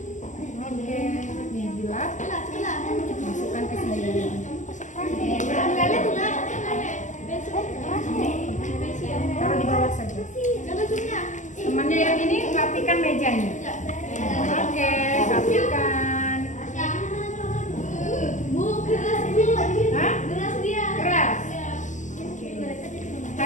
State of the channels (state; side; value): late; right; 0.36 ms